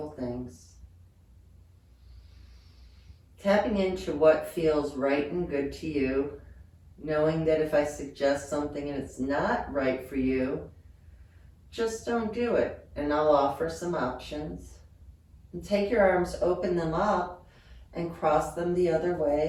things. Tapping into what feels right and good to you, knowing that if I suggest something and it's not right for you, just don't do it, and I'll offer some options. And take your arms, open them up, and cross them the other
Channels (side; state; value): both; identical; correlation 1.00